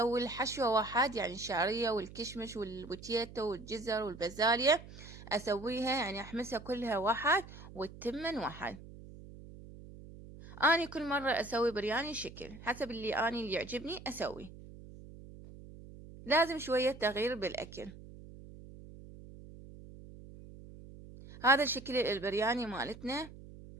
الحشوة واحد، يعني الشعرية والكشمش والبوتيتو والجزر والبازاليا أسويها، يعني أحمسها كلها واحد والتمن واحد. أنا كل مرة أسوي برياني شكل حسب اللي يعجبني أسوي، لازم شوية تغيير بالأكل. هذا الشكل البرياني مالتنا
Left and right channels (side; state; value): right; noise; hum, 16 dB below the sound